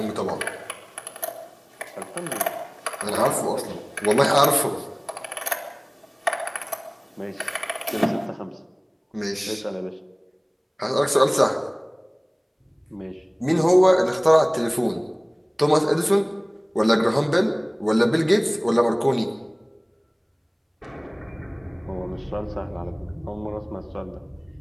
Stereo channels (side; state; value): both; identical; correlation 1.00